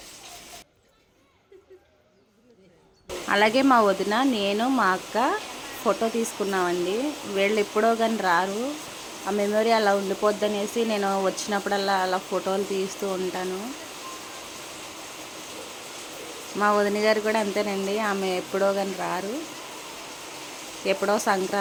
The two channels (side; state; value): both; identical; correlation 1.00